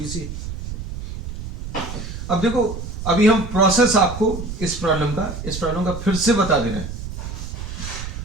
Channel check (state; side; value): noise; right; rumble, 8 dB below the sound